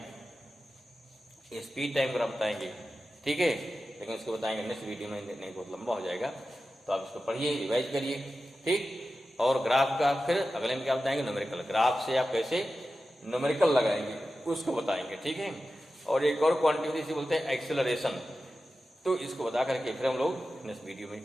स्पीड टाइम ग्राफ बताएंगे। ठीक है, लेकिन उसको बताएंगे नेक्स्ट वीडियो में, नहीं बहुत लंबा हो जाएगा, तो आप इसको पढ़िए, रिवाइज करिए। ठीक, और ग्राफ का फिर अगले में क्या बताएंगे, न्यूमेरिकल, ग्राफ से आप कैसे न्यूमेरिकल लगाएंगे उसको बताएंगे। ठीक है, और एक और क्वांटिटी इसे बोलते हैं एक्सेलरेशन, तो इसको बता करके फिर हम लोग नेक्स्ट वीडियो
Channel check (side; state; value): both; normal; correlation 0.93